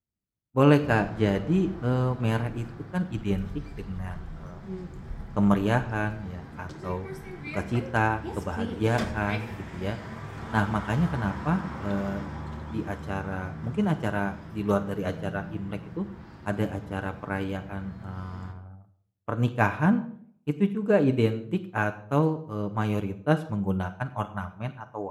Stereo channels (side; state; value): both; identical; correlation 1.00